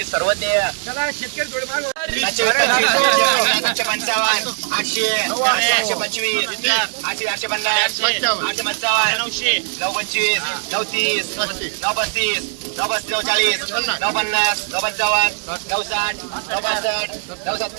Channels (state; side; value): silent; left; digital silence